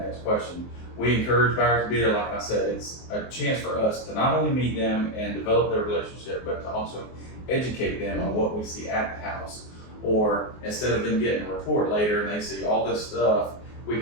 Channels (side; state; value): right; late; 24 ms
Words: question. We encourage buyers to be there. Like I said, it's a chance for us to not only meet them and develop their relationship, but to also educate them on what we see at the house. Or instead of them getting a report later and they see all this stuff, we